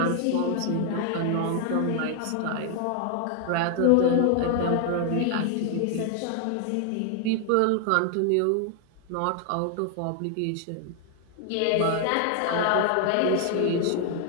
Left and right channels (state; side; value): different; both; correlation 0.00